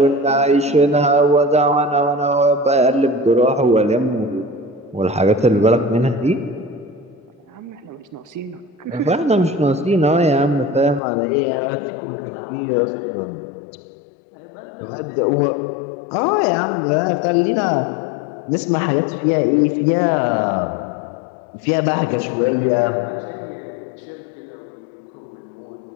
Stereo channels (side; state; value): right; drops out; at 11.0 s